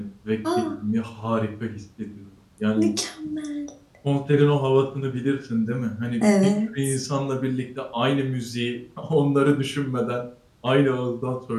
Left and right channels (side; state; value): both; identical; correlation 1.00